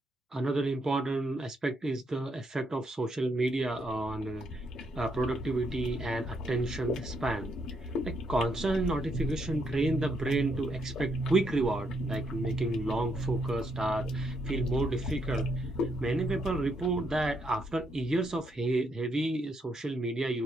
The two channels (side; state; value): both; normal; correlation 0.76